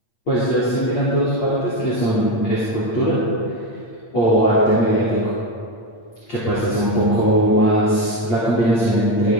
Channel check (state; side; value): late; right; 8.7 ms